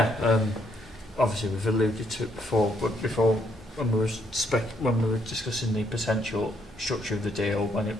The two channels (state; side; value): normal; both; correlation 0.72